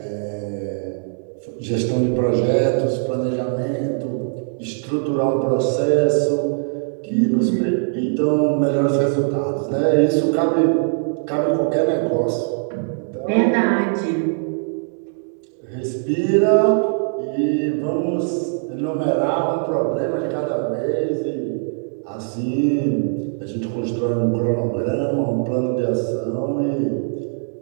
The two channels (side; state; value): left; silent; digital silence